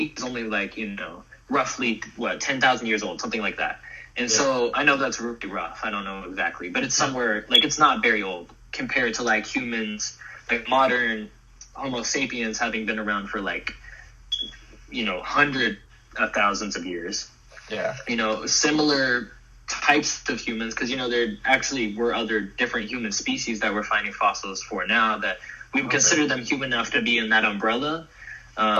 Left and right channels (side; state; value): both; identical; correlation 1.00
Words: is only like, you know, roughly 10,000 years old, something like that. And so I know that's really rough. I don't know exactly, but it's somewhere, like, it's not very old compared to like humans, like modern Homo sapiens having been around for like, you know, hundreds of thousands of years. Yeah. You know, similar types of humans, because, you know, there actually were other different human species that we're finding fossils for now that we would consider them human enough to be in that umbrella,